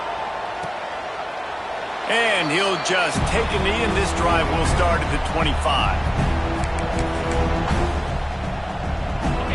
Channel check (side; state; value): both; identical; correlation 1.00